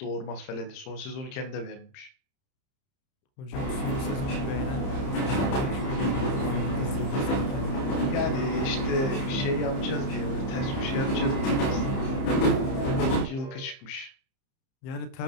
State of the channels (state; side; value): late; right; 30 ms